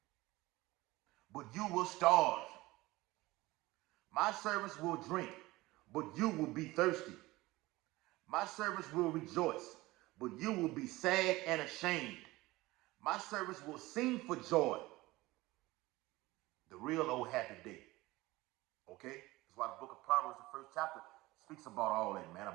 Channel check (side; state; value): left; quieter; 19.8 dB